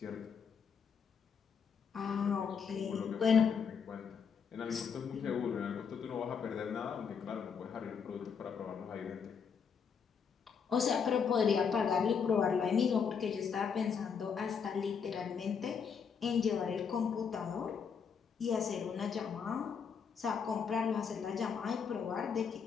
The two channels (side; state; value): right; quieter; 6.5 dB